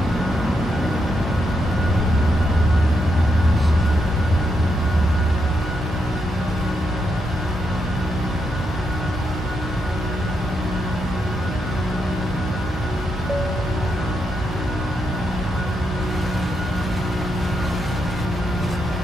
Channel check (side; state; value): both; normal; correlation 0.81